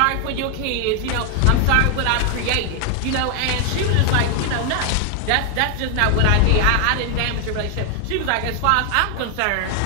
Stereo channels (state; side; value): different; both; correlation 0.00